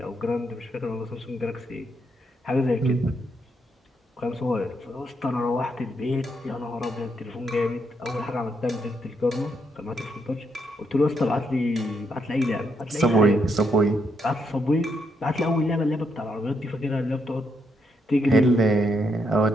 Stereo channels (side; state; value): both; normal; correlation 0.77